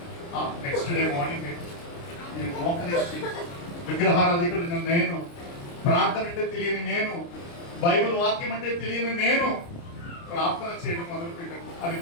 నెక్స్ట్ డే మార్నింగ్ నేను మోకరించి విగ్రహారాధికుడు నేను, ప్రార్థన అంటే తెలియని నేను, బైబిల్ వాక్యం అంటే తెలియని నేను ప్రార్థన చేయడం మొదలుపెట్టాను. అది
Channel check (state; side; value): late; right; 29 ms